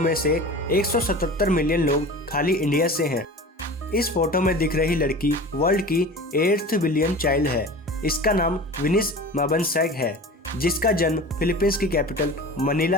से 177 मिलियन लोग खाली इंडिया से हैं। इस फोटो में दिख रही लड़की वर्ल्ड की 8th बिलियन चाइल्ड है। इसका नाम विनिस माबनसैग है, जिसका जन्म फिलीपींस की कैपिटल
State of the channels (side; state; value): both; normal; correlation 0.36